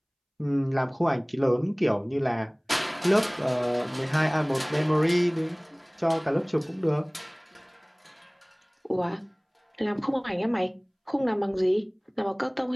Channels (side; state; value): both; identical; correlation 1.00